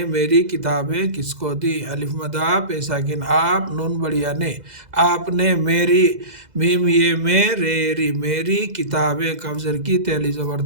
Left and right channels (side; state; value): left; late; 2.0 ms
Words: میری کتابیں کس کو دی، الف مدہ پے ساکن آپ نون بڑیا نے، آپ نے میری میم یہ میں رے ری میری کتابیں کاف زر کی تے الف